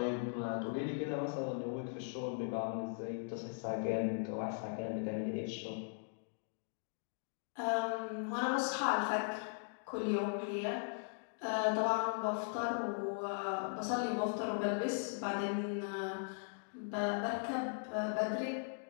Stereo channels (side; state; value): right; silent; digital silence